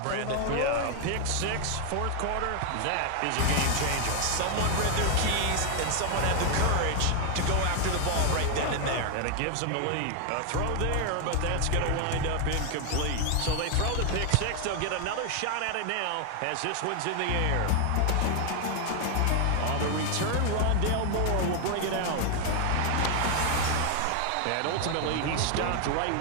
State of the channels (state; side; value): different; both; correlation 0.00